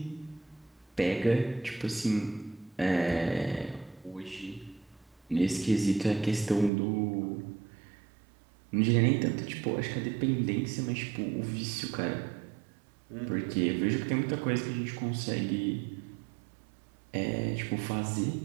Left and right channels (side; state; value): left; drops out; at 6.7 s